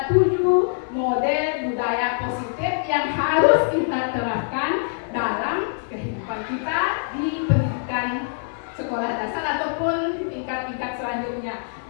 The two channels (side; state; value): right; silent; 63 dB below the other